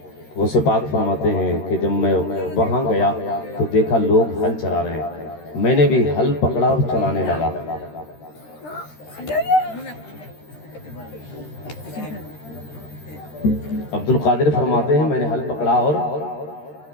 غوث پاک فرماتے ہیں کہ جب میں وہاں گیا تو دیکھا لوگ ہل چلا رہے ہیں، میں نے بھی ہل پکڑا اور چلانے لگا۔ عبد القادر فرماتے ہیں میں نے ہل پکڑا اور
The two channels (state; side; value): late; right; 13 ms